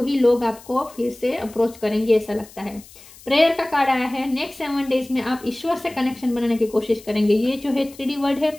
लोग आपको फिर से अप्रोच करेंगे, ऐसा लगता है। प्रेयर का कार्ड आया है। नेक्स्ट 7 डेज में आप ईश्वर से कनेक्शन बनाने की कोशिश करेंगे। ये जो है 3D वर्ड है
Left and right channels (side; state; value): left; noise; hiss, 21 dB below the sound